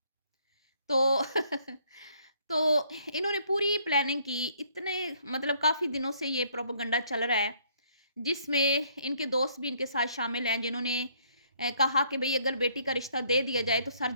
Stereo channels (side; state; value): both; inverted; correlation -0.65